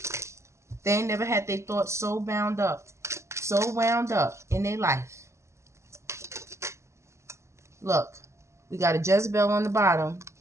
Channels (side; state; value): left; late; 0.13 ms